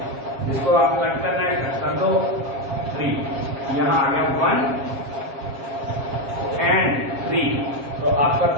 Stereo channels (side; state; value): left; late; 7.4 ms